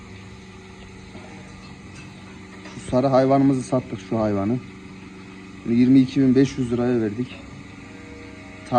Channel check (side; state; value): both; identical; correlation 1.00